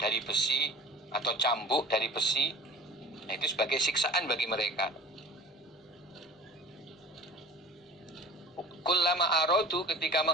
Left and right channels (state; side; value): normal; both; correlation 0.40